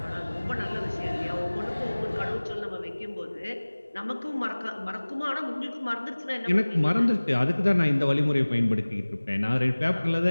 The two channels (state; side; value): inverted; both; correlation -1.00